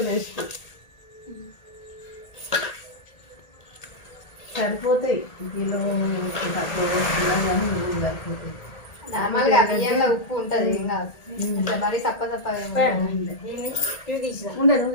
బెస్ట్ సరిపోతాయి కిలో తక్కువ వేసుకున్నాం కానీ నువ్వులు సరిపోతాయి నార్మల్గా బియ్యంలో ఉప్పు ఉంటుంది ఏం కాదు మరి సప్ప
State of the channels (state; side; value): late; right; 1.8 ms